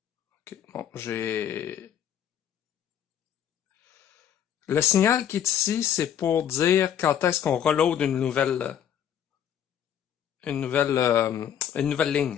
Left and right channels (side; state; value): right; quieter; 9.5 dB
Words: Ok, bon, j'ai... Le signal qui est ici, c'est pour dire quand est-ce qu'on reload une nouvelle